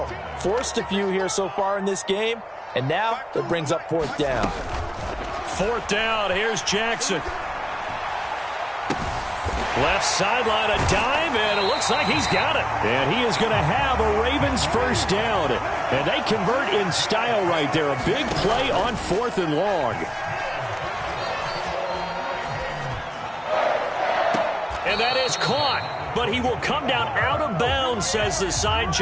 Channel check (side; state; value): both; identical; correlation 1.00